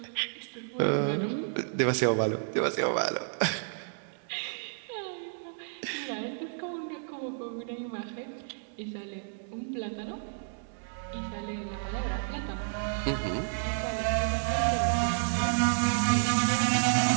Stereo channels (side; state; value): left; silent; digital silence